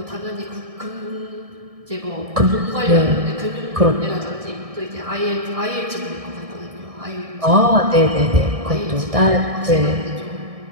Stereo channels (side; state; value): left; late; 1.6 ms